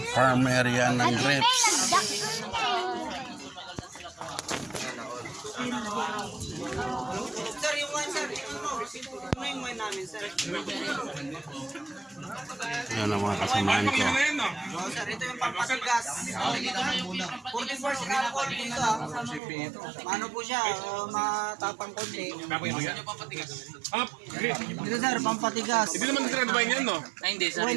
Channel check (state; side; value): drops out; left; at 19.4 s